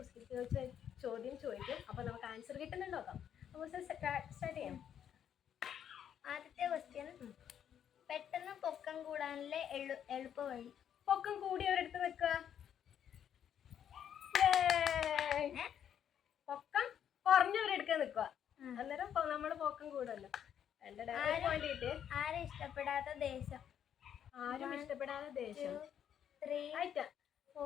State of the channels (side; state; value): right; quieter; 9.2 dB